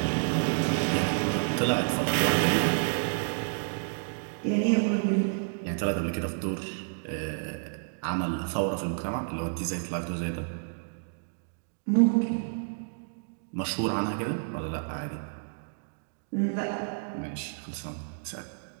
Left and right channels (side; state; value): left; silent; digital silence